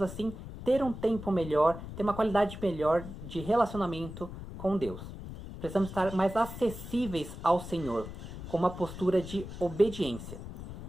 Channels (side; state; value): left; noise; rumble, 11 dB below the sound